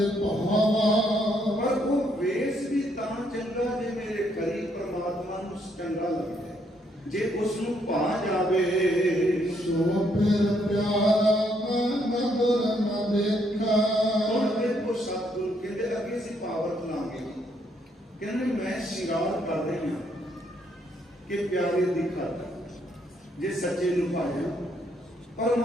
ਭਾਵਾ ਪਰ ਉਹ ਵੇਸ ਵੀ ਤਾਂ ਚੰਗਾ ਜੇ ਮੇਰੇ ਕਰੀ ਪ੍ਰਮਾਤਮਾ ਨੂੰ ਚੰਗਾ ਲੱਗੇ, ਜੇ ਉਸ ਨੂੰ ਭਾ ਜਾਵੇ। ਸੋ ਫਿਰ ਪਿਆਰਾ ਨਦਰ ਨ ਦੇਖਾ ਹੁਣ ਦੇਖੋ ਸਤਿਗੁਰੂ ਕਹਿੰਦੇ ਅੱਗੇ ਅਸੀਂ ਪਾਵਰ ਲਾਂਗੇ, ਕਹਿੰਦੇ ਮੈਂ ਸ਼ਿੰਗਾਰ ਕਰ ਰਹੀ ਹਾਂ ਕਿ ਪਿਆਰੇ ਦੀ ਖਾਤਰ ਜੇ ਸੱਚੇ ਨੂੰ ਪਾਇਆ। ਪਰ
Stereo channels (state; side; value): normal; both; correlation 0.72